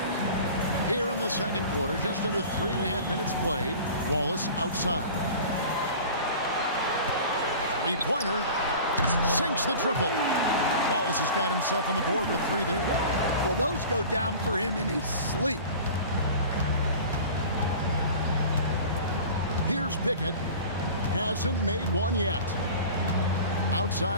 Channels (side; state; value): both; inverted; correlation -0.39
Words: Here in the second quarter, just under 3.5 minutes played. Wallace outside. 3-pointer. Sinks the triple. Wallace has got himself on the board with 3 there. Well, those go down for him in his sleep. Here's Pickett. Hasn't made one yet.